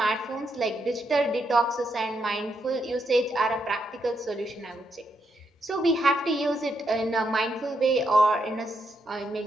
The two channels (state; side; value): normal; both; correlation 0.80